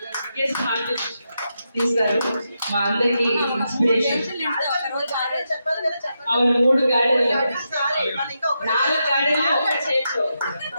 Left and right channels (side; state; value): both; inverted; correlation -0.85